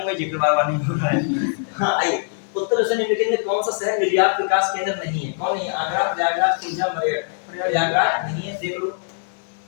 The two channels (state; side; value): silent; right; digital silence